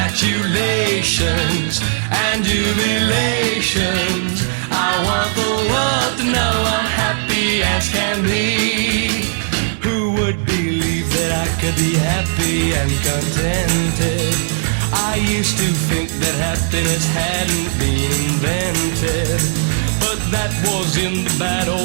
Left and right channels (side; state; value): left; silent; 68 dB below the other